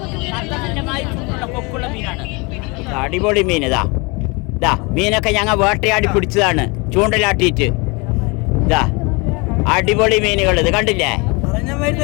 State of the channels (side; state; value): right; quieter; 28.3 dB